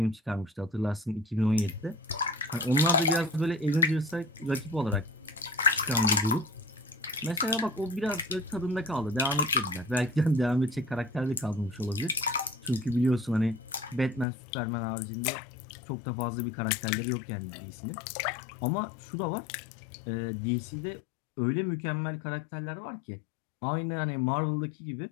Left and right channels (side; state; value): right; drops out; at 14.2 s